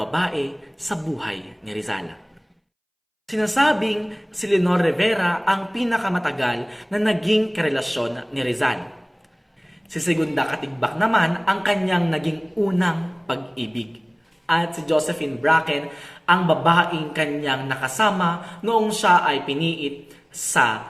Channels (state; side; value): identical; both; correlation 1.00